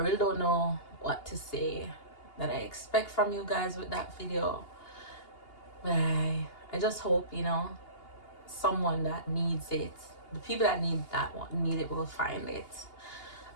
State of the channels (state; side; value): late; right; 2.8 ms